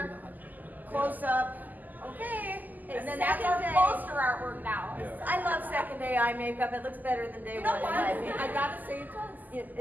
close up. Okay. And then that's our Second day. poster artwork now. Yeah. I love second day eye makeup. It looks better than day You know one. what? in my opinion. I gotta say it does. It's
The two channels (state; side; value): late; left; 0.083 ms